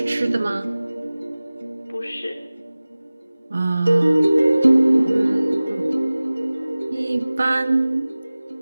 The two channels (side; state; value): both; inverted; correlation -0.98